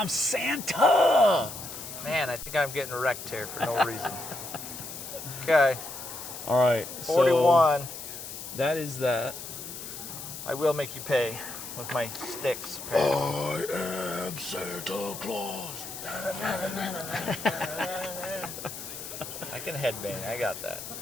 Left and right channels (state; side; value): noise; left; hiss, 10 dB below the sound